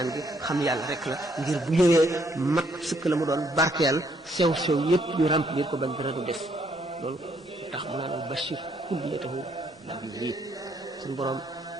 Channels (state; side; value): normal; both; correlation 0.69